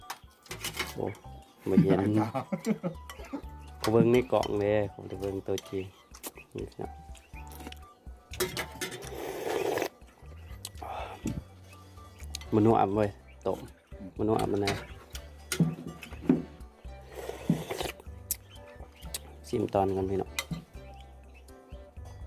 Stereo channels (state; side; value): identical; both; correlation 1.00